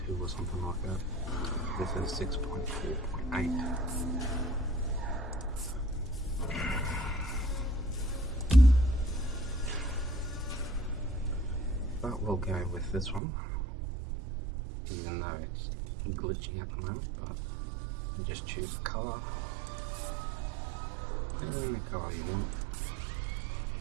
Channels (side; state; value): left; drops out; at 13.2 s